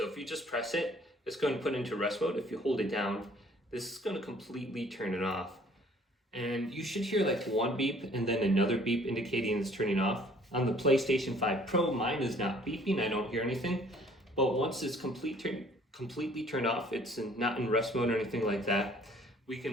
if you just press it, it's going to put into rest mode. If you hold it down, this is going to completely turn it off. And you should hear like one beep and then another beep indicating it's turning off. On the PlayStation 5 Pro, mine is not beeping, I don't hear anything. But once it's completely turned off, it's not in rest mode or anything like that, we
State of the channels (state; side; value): normal; both; correlation 0.56